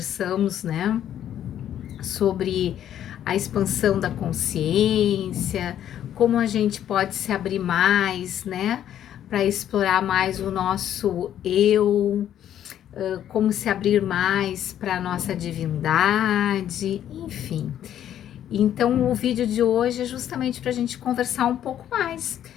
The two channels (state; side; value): quieter; right; 10.7 dB